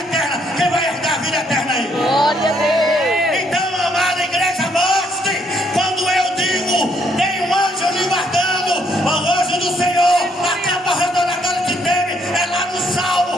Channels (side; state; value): both; normal; correlation 0.70